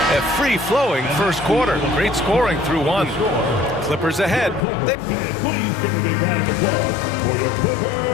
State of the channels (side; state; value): right; drops out; at 4.7 s